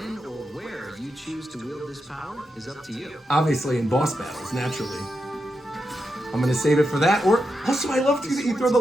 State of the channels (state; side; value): normal; both; correlation 0.86